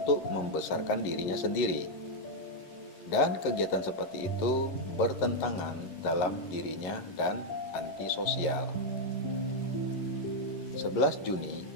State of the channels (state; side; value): late; right; 11 ms